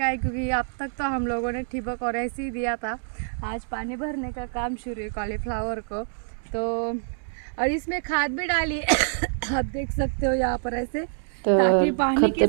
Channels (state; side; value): silent; left; digital silence